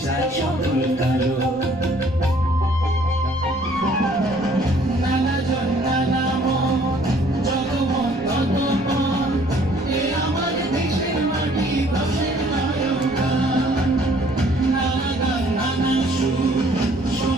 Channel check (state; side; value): noise; left; rumble, 20 dB below the sound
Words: সকল কালো। নানা জন নানা মত জগমত ততমত এ আমার দেশের মাটি দশের নায়ক গান। নানা গান নানা সুর